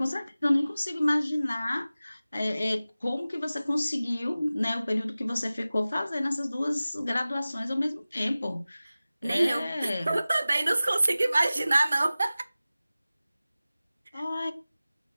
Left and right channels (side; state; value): both; inverted; correlation -0.97